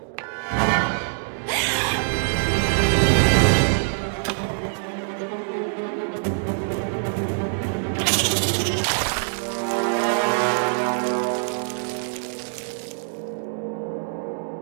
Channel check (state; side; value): silent; left; digital silence